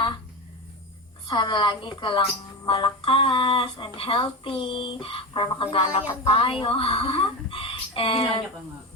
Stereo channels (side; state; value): both; normal; correlation 0.20